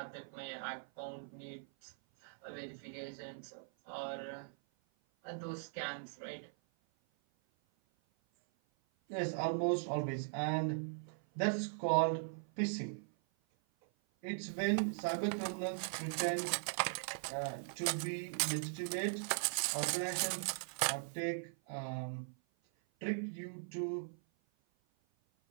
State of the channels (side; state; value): left; silent; 51 dB below the other